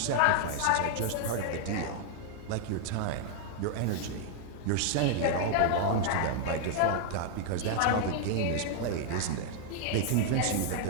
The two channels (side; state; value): both; different; correlation 0.00